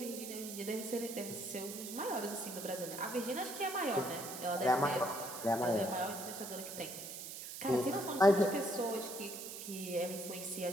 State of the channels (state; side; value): noise; right; hiss, 9 dB below the sound